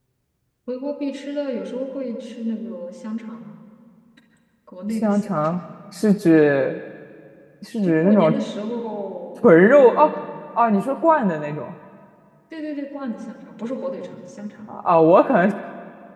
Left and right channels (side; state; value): both; identical; correlation 1.00